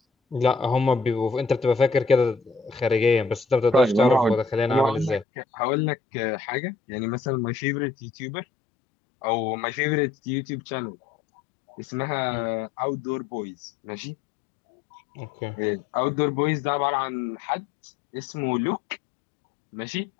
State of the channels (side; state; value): right; drops out; at 5.2 s